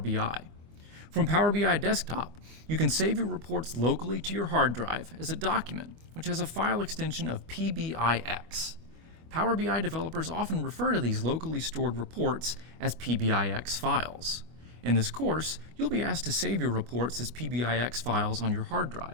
From Power BI Desktop, you can save your reports locally to your hard drive as a document, which has a file extension of PBIX. Power BI developers often refer to these locally stored reports as PBIX files. In this course, you'll be asked to save your reports as PBIX files on your hard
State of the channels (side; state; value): left; late; 24 ms